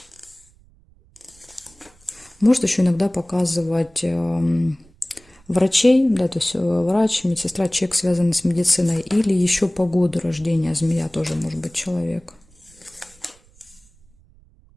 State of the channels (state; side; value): noise; right; rumble, 30 dB below the sound